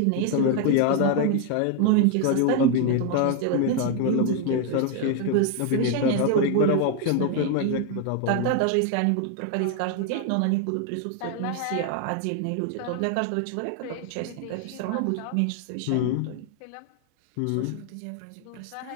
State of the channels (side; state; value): both; different; correlation 0.01